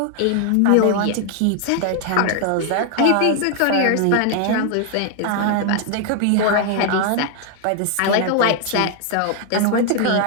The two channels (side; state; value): both; different; correlation 0.00